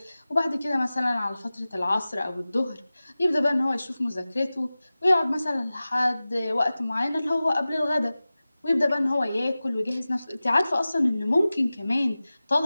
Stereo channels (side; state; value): both; inverted; correlation -0.97